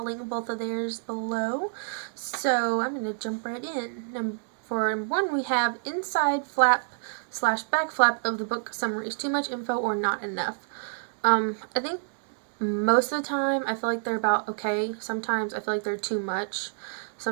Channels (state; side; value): silent; left; digital silence